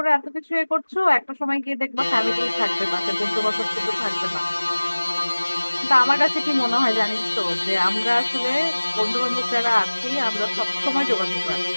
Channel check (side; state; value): both; inverted; correlation -1.00